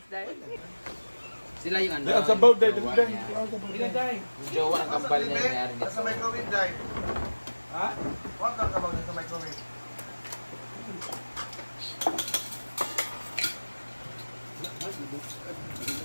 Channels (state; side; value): inverted; both; correlation -1.00